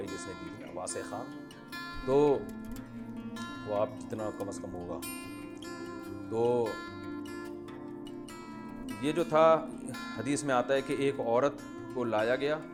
جس نے دی تھی، واسع خان، تو وہ آپ جتنا کم از کم ہوگا۔ تو یہ جو تھا حدیث میں آتا ہے کہ ایک عورت کو لایا گیا،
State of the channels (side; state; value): both; identical; correlation 1.00